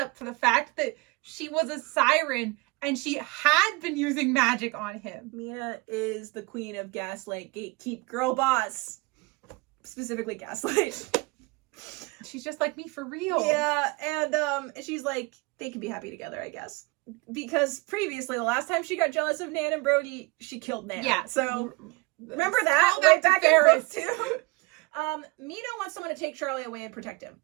for the fact that she was a siren and she had been using magic on him. Mina is the queen of gaslight, gatekeep, girl boss. Specifically gaslight. She's just like me for real. Yeah, and she's like, they can be happy together, I guess. Because previously, the last time she got jealous of Nan and Brody, she killed Nan. Yeah. So, remember that? Right back to Ferris. In book 2. Mina wants someone to take Charlie away and protect him.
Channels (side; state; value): left; quieter; 25.4 dB